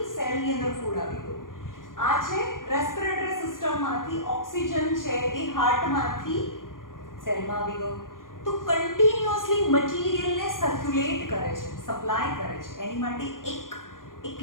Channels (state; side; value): late; right; 0.90 ms